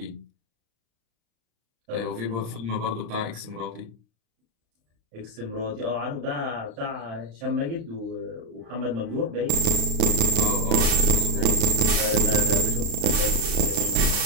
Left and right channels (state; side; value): late; left; 35 ms